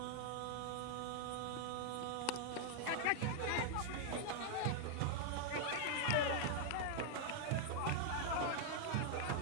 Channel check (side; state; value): both; different; correlation 0.00